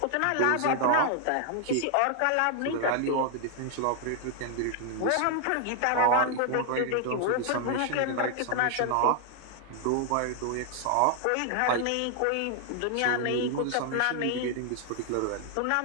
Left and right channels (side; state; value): both; different; correlation 0.00